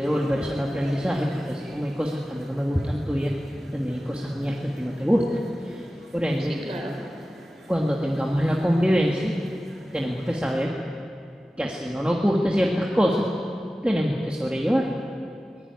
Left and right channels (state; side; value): normal; both; correlation 0.95